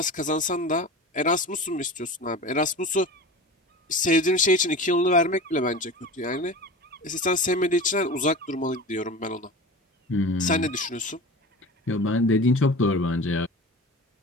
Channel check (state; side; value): normal; both; correlation 0.33